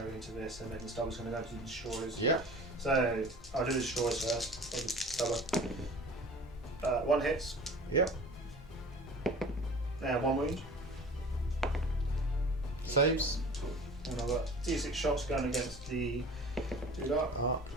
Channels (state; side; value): normal; both; correlation 0.42